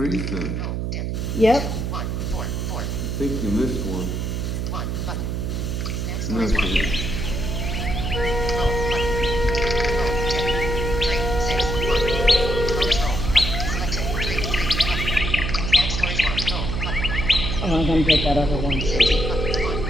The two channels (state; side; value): noise; right; hum, 2 dB below the sound